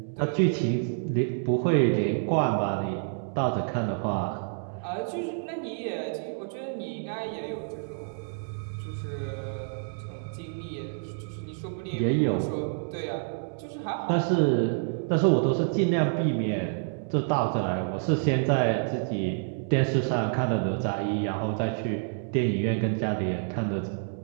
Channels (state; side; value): silent; left; digital silence